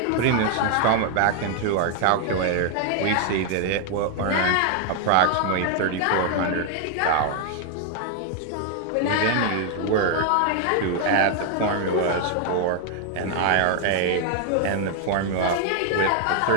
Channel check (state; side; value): different; both; correlation 0.00